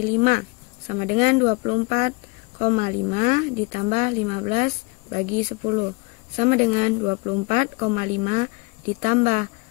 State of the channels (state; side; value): quieter; right; 26.9 dB